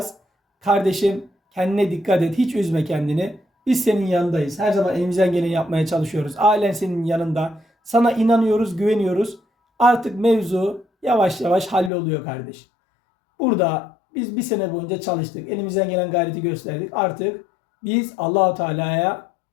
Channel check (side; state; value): right; drops out; at 11.9 s